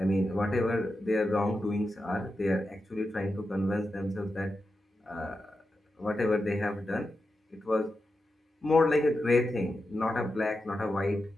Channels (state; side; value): normal; both; correlation 0.89